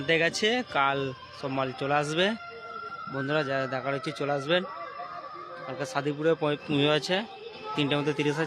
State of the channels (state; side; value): identical; both; correlation 1.00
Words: গেছে, কাল সব মাল চলে আসবে। বন্ধুরা যারা দেখার হচ্ছে চলে আসবেন। কালকে সাদিপুরে পুজো আছে, 3টার মধ্যে 30